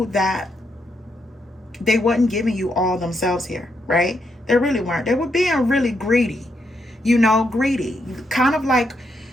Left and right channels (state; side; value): normal; both; correlation 0.79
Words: they wasn't giving you all themselves here, right? They really weren't. They were being really greedy, greedy. Kind of like,